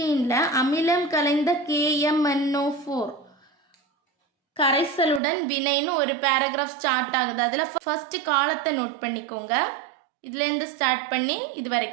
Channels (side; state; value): left; drops out; at 5.2 s